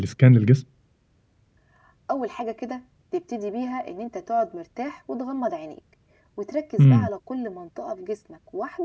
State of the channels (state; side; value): identical; both; correlation 1.00